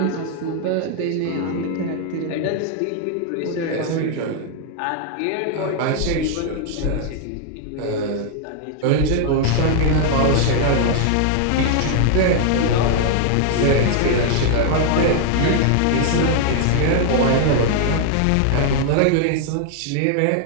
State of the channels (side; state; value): both; different; correlation 0.00